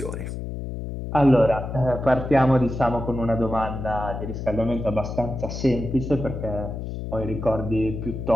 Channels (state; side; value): noise; left; hum, 6 dB below the sound